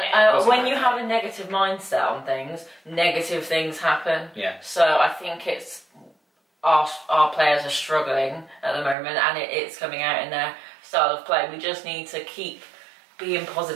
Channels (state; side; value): drops out; left; at 9.0 s